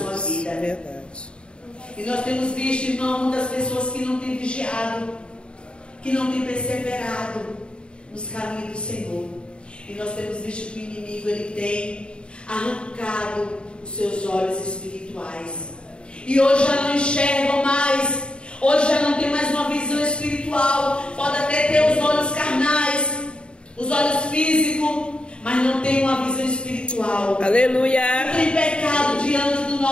vida. É verdade. E nós temos visto, irmão, muitas pessoas que não têm vigiado, que não têm perseverado nos caminhos do Senhor. E nós temos visto que o inimigo, ele tem arrancado os seus olhos espirituais. E hoje já não enxergam mais, hoje já não tem mais uma visão espiritual. Pode até ter os olhos carnais, os olhos físicos, mas não tem uma visão espiritual. Aleluia. Não tem pecado diante do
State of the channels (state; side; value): late; right; 0.054 ms